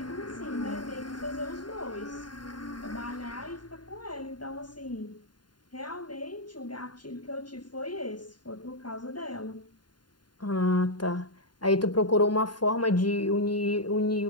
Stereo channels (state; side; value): late; right; 0.71 ms